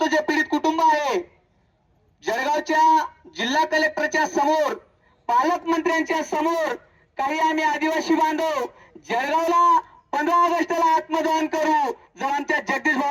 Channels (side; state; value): both; identical; correlation 1.00